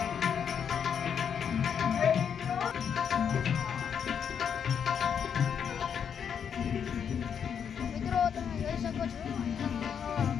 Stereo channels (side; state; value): right; quieter; 7.7 dB